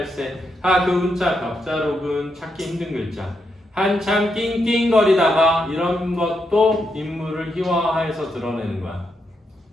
그 운자 벽자록은 찾기 힘든 글자. 한참 낑낑거리다가 이런 것도 인물을 희화화해서 드러내는 거야.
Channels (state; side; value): normal; both; correlation 0.82